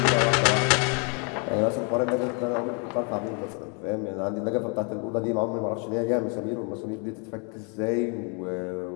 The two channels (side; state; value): right; quieter; 36.5 dB